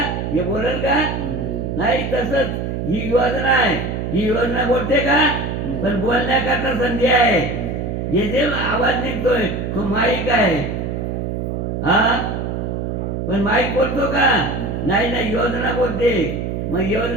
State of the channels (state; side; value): noise; right; hum, 3 dB below the sound